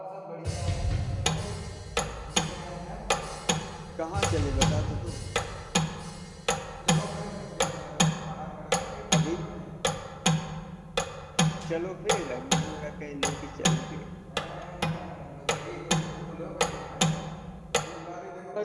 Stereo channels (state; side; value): identical; both; correlation 1.00